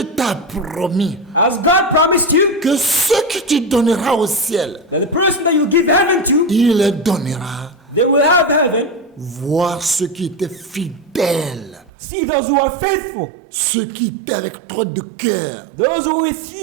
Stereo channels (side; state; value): left; drops out; at 11.9 s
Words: t'a promis As God promised you, que ce que tu donneras au ciel, that the person that you give heaven to, il les donnera. they will have heaven. Voir ceux qui étaient fidèles, See those who are faithful. ceux qui étaient avec toi de cœur, Those who with